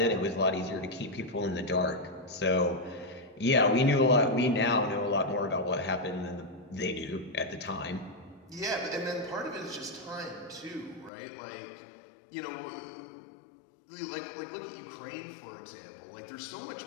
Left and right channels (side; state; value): right; drops out; at 11.1 s